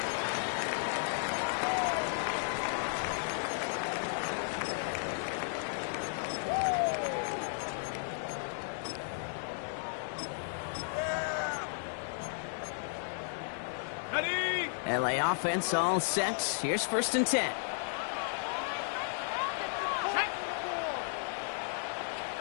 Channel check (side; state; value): right; silent; digital silence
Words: LA offense all set. Here's 1st and 10.